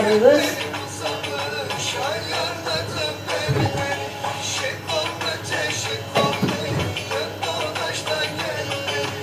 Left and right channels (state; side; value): identical; both; correlation 1.00